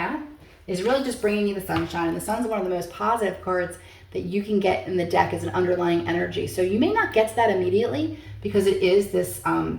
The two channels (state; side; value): identical; both; correlation 1.00